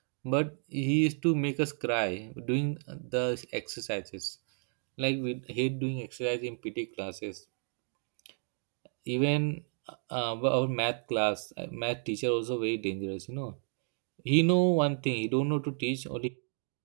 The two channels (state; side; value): silent; left; 56 dB below the other